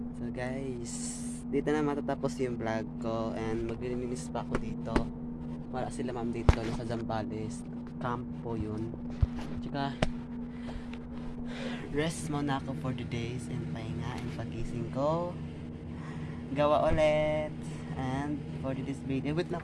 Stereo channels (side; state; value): both; identical; correlation 1.00